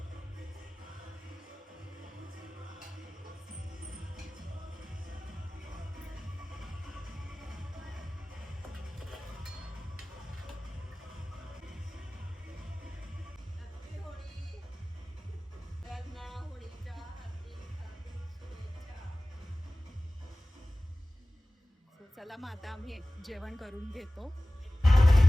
चला मग आता आम्ही जेवण करून घेतो.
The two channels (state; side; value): normal; both; correlation 0.98